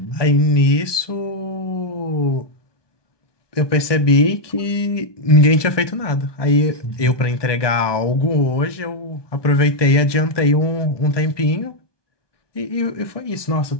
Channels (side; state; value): right; late; 1.2 ms